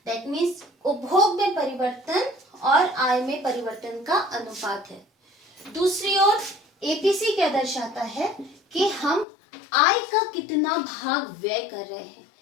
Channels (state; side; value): drops out; right; at 9.2 s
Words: That means उपभोग में परिवर्तन और आय में परिवर्तन का अनुपात है। दूसरी ओर एपीसी क्या दर्शाता है कि हम आय का कितना भाग व्यय कर रहे हैं।